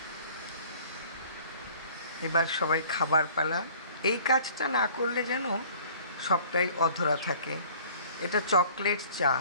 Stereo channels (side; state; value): both; inverted; correlation -0.50